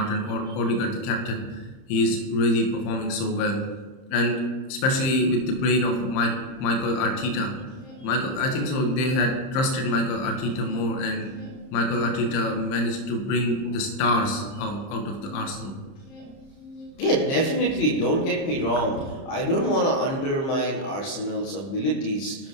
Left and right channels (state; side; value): late; right; 30 ms